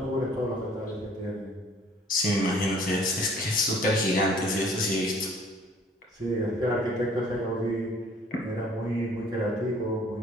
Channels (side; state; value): both; normal; correlation 0.55